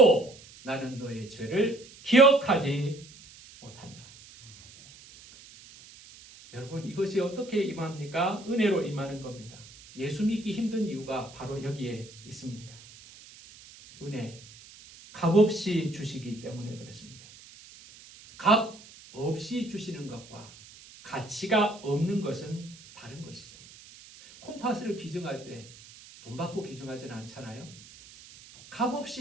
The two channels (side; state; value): right; noise; hiss, 20 dB below the sound